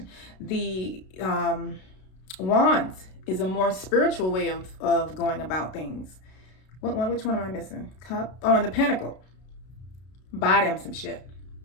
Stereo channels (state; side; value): late; right; 32 ms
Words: The wands is a more spiritual way of going about things. Which one am I missing? Cup? Oh, and the pentacle. Buy them some shit.